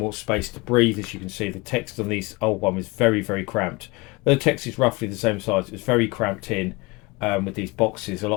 space to breathe. As you can see, the text on these old one is very, very cramped. The text is roughly the same size. It's very cramped in with these boxes. A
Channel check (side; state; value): right; quieter; 24.7 dB